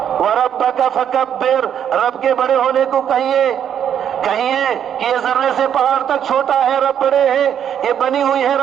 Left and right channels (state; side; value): quieter; left; 9.1 dB